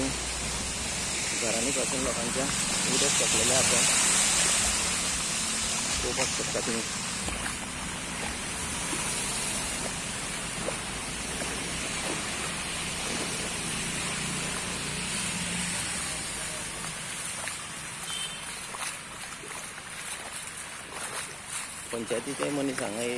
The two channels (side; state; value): both; identical; correlation 1.00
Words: घरांनी पासून लोकांच्या उदक सोडलेलें आसा। पळोवपाक शकता तुम्ही। पंचायतीचे मनीस हांगा